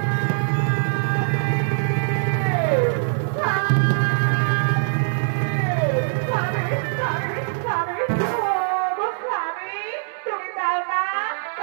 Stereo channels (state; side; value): silent; left; 62 dB below the other